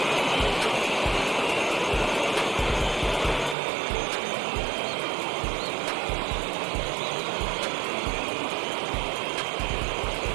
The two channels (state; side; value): drops out; left; at 3.6 s